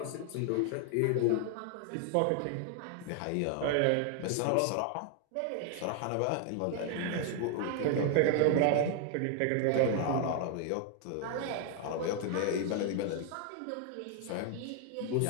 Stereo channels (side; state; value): both; different; correlation 0.00